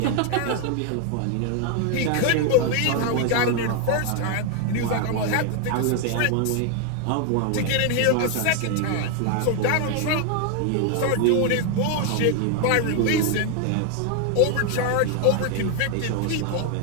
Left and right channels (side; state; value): both; different; correlation 0.00